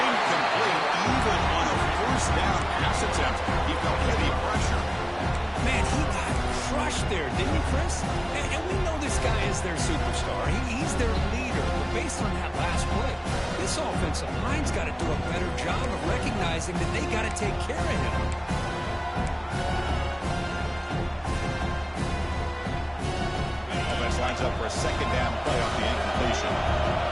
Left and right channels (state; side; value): identical; both; correlation 1.00